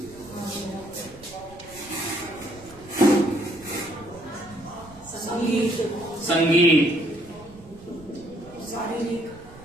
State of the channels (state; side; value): noise; right; rumble, 21 dB below the sound